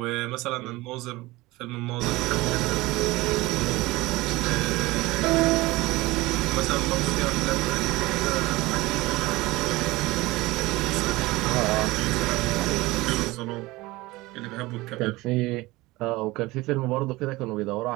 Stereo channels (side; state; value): left; quieter; 20.5 dB